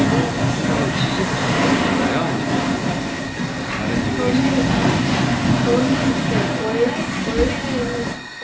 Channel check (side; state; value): both; identical; correlation 1.00